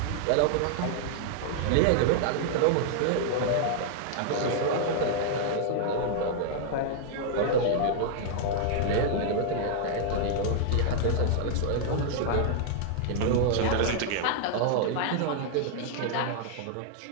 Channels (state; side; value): different; both; correlation -0.01